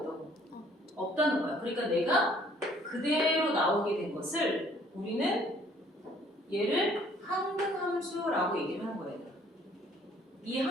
없다는 거야. 그러니까 내가 그대로 나오게 된 것을 우리는 얘를 항등함수라고 얘기를 하는 거예요. 이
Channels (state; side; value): normal; both; correlation 0.59